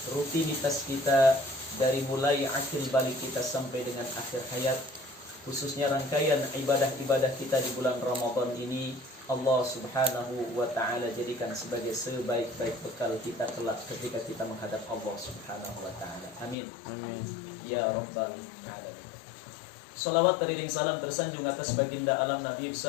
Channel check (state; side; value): drops out; right; at 16.6 s